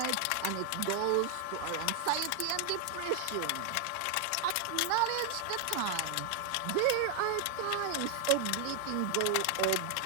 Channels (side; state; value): both; different; correlation 0.00